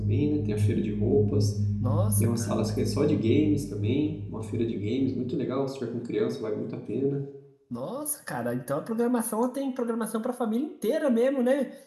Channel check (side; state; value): both; identical; correlation 1.00